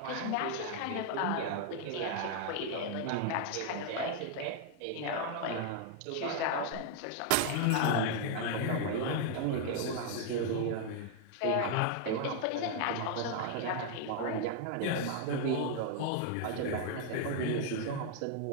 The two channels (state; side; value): different; both; correlation 0.00